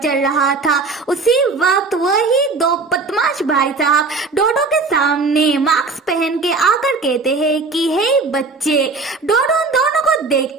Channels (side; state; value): left; quieter; 4.1 dB